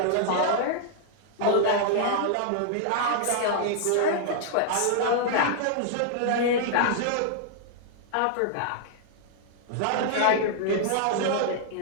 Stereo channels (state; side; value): different; both; correlation -0.01